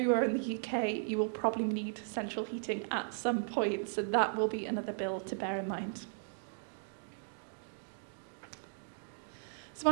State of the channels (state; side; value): silent; left; digital silence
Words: in the UK, you will probably need central heating at some point. So that will be another bill to bear in mind. So